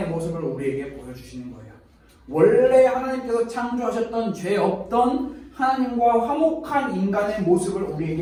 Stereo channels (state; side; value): identical; both; correlation 1.00